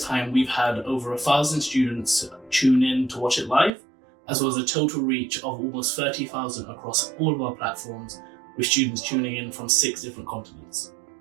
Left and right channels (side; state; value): left; drops out; at 3.7 s